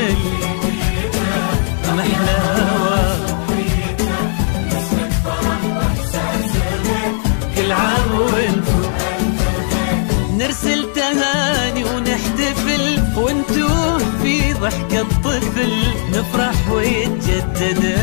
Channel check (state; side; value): silent; right; digital silence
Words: محلى هوا، كل عام وانتو نرسل تهاني ونحتفل، وانتو في ضحكة طفل نفرح ويتجدد